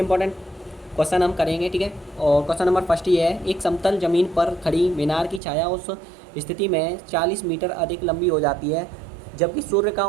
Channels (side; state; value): left; drops out; at 5.4 s